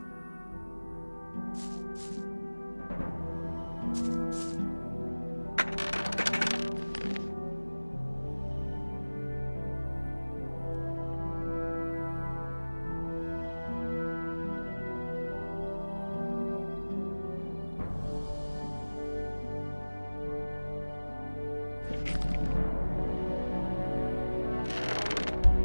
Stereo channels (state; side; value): inverted; both; correlation -1.00